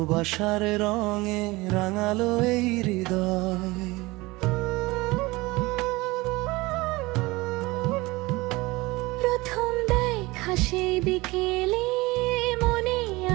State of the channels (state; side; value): quieter; left; 21.8 dB